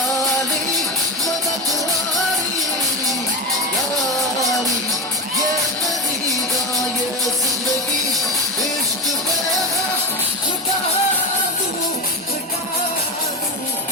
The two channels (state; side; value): normal; both; correlation 0.21